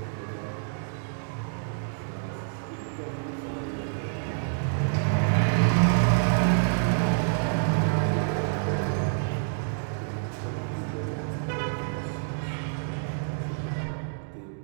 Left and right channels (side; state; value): left; silent; digital silence